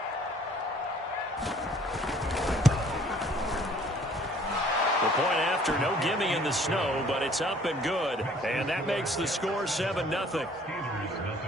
Point after, no gimme in the snow, but it's up and good. And that makes the score 7-0.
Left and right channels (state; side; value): normal; both; correlation 0.56